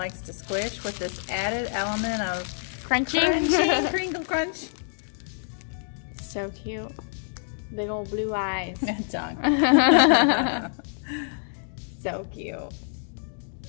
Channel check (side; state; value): right; silent; digital silence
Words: to squish with this added element of Crunching. crinkle crunch. So cute. Big old blue eyes. Tongue. So cute.